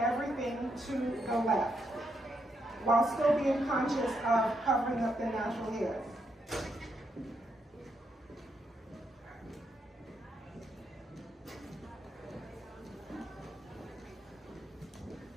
to the left, while still being conscious of covering up the natural hair.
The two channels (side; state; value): both; normal; correlation 0.79